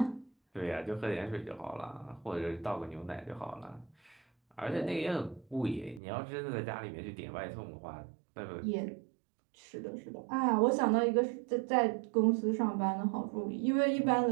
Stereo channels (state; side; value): drops out; left; at 6.0 s